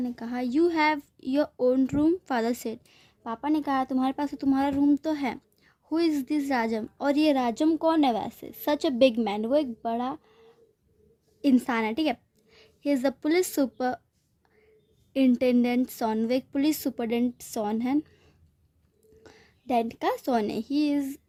ने कहा you have your own room. Father said, पापा ने कहा तुम्हारे पास तो तुम्हारा रूम तो है। हु इज़ दिस राजम, और ये राजम कौन है वैसे। सच अ बिग मैन, वो एक बड़ा इंसान है, ठीक है। He is the police superintendent son, वो एक पुलिस सुपरडेंट सॉन है, डेंट का सॉन है।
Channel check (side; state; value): both; identical; correlation 1.00